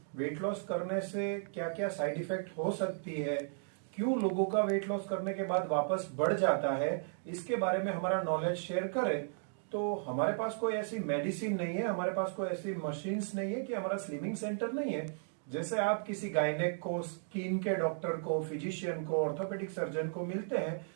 वेट लॉस करने से क्या क्या साइड इफेक्ट हो सकती है, क्यों लोगों का वेट लॉस करने के बाद वापस बढ़ जाता है, इसके बारे में हमारा नॉलेज शेयर करें। तो हमारे पास कोई ऐसी मेडिसिन नहीं है, हमारे पास कोई ऐसी मशीन्स नहीं है कि हमारा स्लिमिंग सेंटर नहीं है। जैसे आप किसी गायनेक को, स्किन के डॉक्टर को, फिजिशियन को, ऑर्थोपेडिक सर्जन को मिलते हैं,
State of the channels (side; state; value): left; silent; digital silence